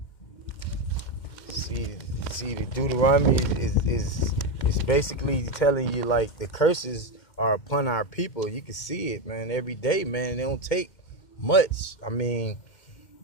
See, the Deuteronomy is basically telling you, like, the curses are upon our people. You can see it, man, every day, man. They don't take much. I mean,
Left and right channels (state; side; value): late; right; 2.1 ms